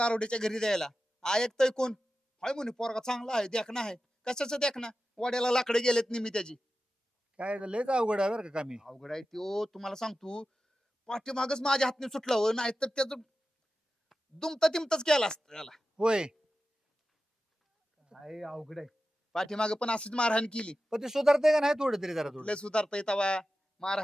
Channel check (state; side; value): normal; both; correlation 0.93